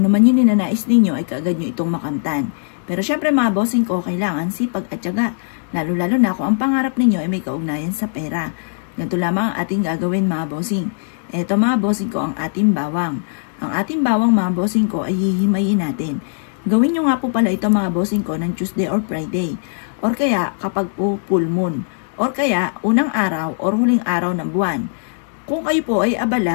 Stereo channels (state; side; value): silent; right; digital silence